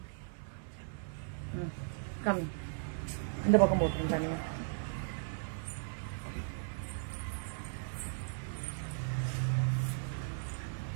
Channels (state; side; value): silent; left; 53 dB below the other